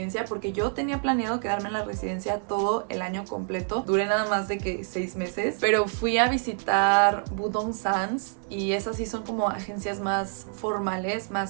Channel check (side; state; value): left; silent; 59 dB below the other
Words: porque yo tenía planeado quedarme en la residencia todo el año completo. Duré nada más de que 6 meses. Pero fui a visitar Budongsan's, y esas sí son como agencias más formales,